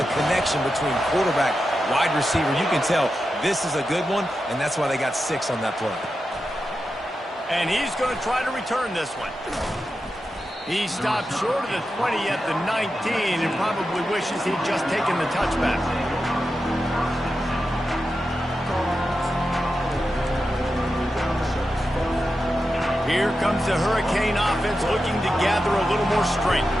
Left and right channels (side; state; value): both; normal; correlation 0.90